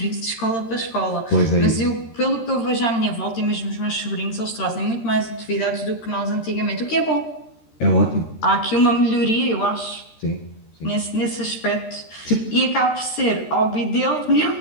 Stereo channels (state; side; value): late; right; 13 ms